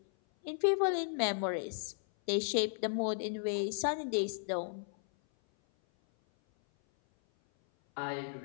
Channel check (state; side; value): silent; right; 55 dB below the other